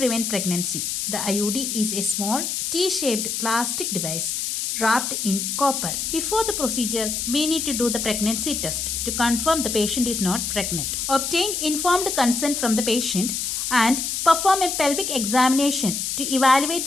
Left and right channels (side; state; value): left; noise; hiss, 2 dB below the sound